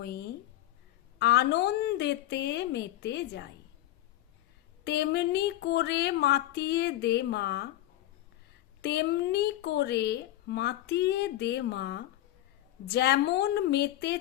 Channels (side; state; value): right; quieter; 14.4 dB